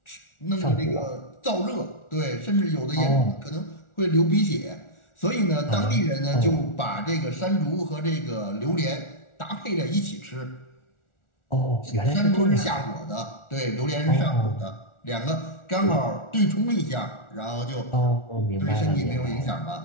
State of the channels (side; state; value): right; late; 1.4 ms